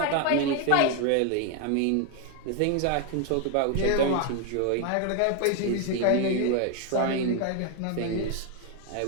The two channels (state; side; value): different; both; correlation 0.01